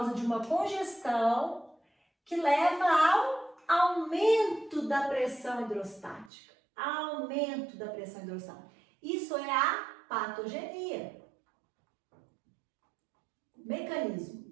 de uma congestão que leva ao aumento da pressão hidrostática. Aumento da pressão hidrostática. Isso é a patogenia. Mecanismo.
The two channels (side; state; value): left; drops out; at 6.3 s